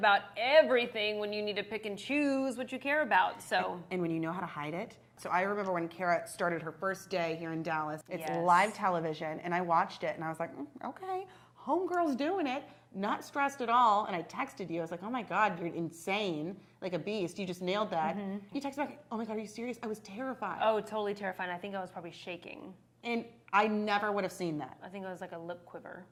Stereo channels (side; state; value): both; identical; correlation 1.00